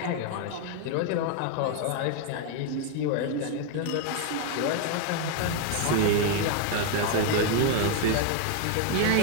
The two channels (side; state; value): both; different; correlation 0.01